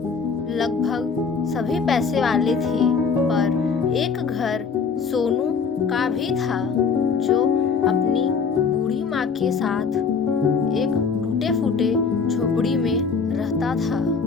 लगभग सभी पैसे वाले थे, पर एक घर सोनू का भी था जो अपनी बूढ़ी माँ के साथ एक टूटे फूटे झोपड़ी में रहता था।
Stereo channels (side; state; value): right; quieter; 5.5 dB